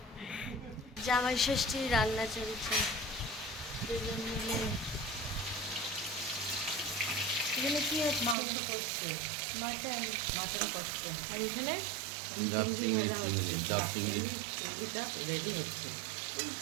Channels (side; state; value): left; drops out; at 8.3 s